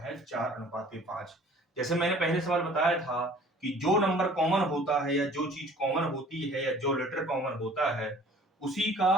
है 4:5। जैसे मैंने पहले सवाल बताया था कि जो नंबर कॉमन होता है या जो चीज कॉमन होती है या जो लेटर कॉमन होता है उसी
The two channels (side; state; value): both; normal; correlation 0.51